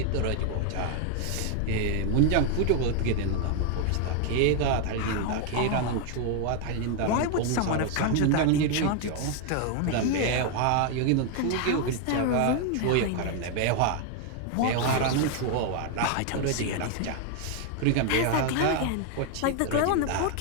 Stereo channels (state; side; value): different; both; correlation 0.00